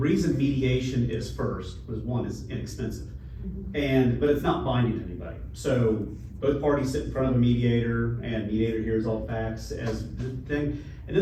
mediation is first was one, is inexpensive. But it's not binding to anybody. So both parties sit in front of a mediator, and mediator hears all facts as the thing, and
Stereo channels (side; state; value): both; identical; correlation 1.00